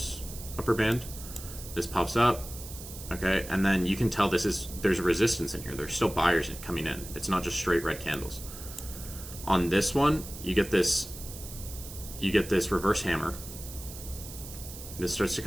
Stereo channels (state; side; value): noise; right; hiss, 13 dB below the sound